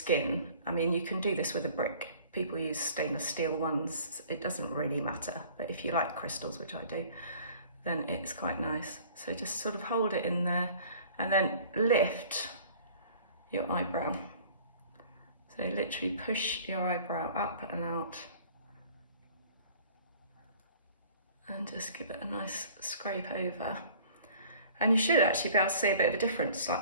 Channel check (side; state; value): both; inverted; correlation -0.49